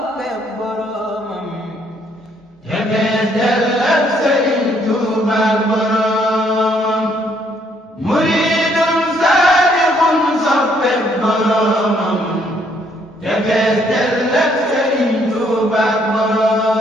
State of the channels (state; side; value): normal; both; correlation 0.68